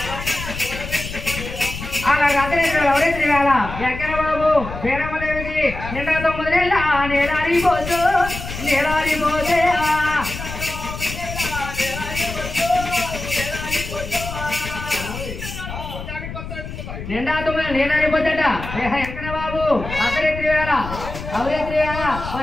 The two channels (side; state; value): left; noise; rumble, 9 dB below the sound